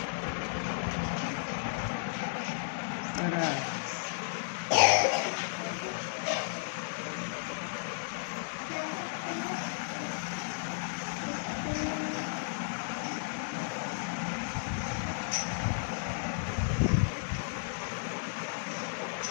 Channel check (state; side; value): silent; right; digital silence